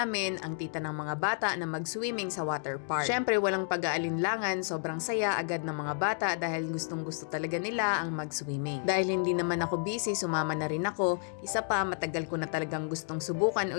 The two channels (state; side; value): silent; right; digital silence